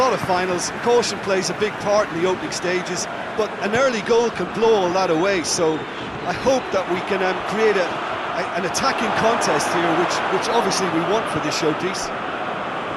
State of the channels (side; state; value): both; identical; correlation 1.00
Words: of finals, caution plays a big part in the opening stages, but an early goal can blow all that away, so I hope that we can create an attacking contest here, which obviously we want for this showpiece.